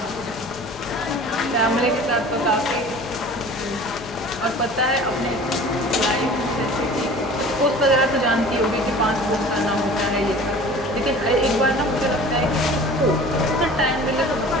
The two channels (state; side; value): normal; both; correlation 0.43